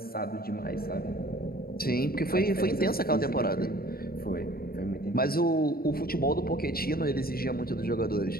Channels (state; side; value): late; right; 0.44 ms